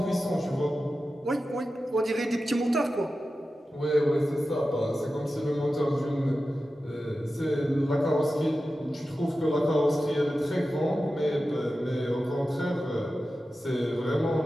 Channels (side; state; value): both; normal; correlation 0.93